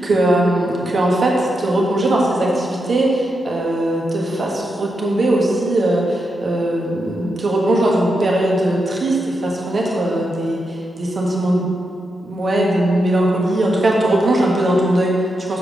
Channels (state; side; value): normal; both; correlation 0.85